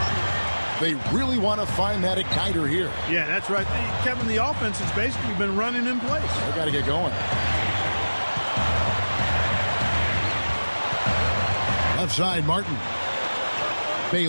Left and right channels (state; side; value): inverted; both; correlation -1.00